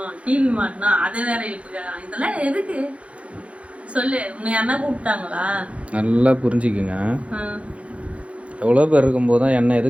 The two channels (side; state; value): left; late; 0.063 ms